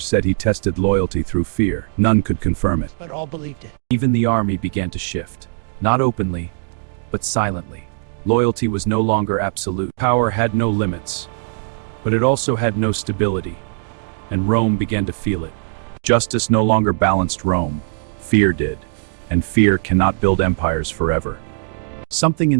said he tested loyalty through fear. None could confirm it. But all believed it. Even the army began to shift. Not openly, but silently. Loyalty was no longer absolute. Power had no limits, but it also had no stability. And Rome began to feel it. Justice no longer balanced Rome. Fear did. And fear cannot build empires forever. Something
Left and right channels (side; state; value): left; silent; digital silence